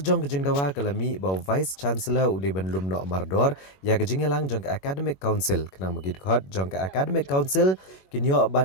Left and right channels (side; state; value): right; late; 21 ms